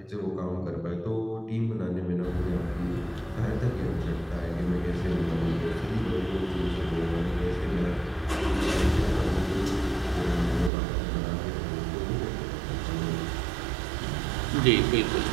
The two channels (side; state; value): left; drops out; at 10.7 s